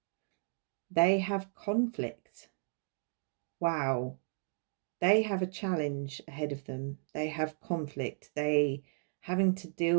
they have conflict. Wow. They have a challenge ahead of them. They have conflict. They having to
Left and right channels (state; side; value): silent; left; digital silence